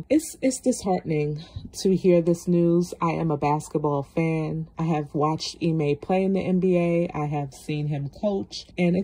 It's disheartening to hear this news. I am a basketball fan. I have watched Ime play in the NBA. I have seen him coach, and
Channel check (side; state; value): both; identical; correlation 1.00